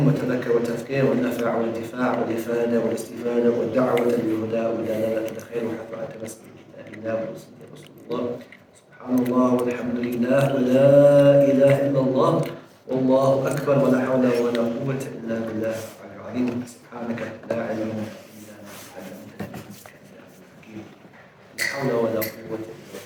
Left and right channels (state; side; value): identical; both; correlation 1.00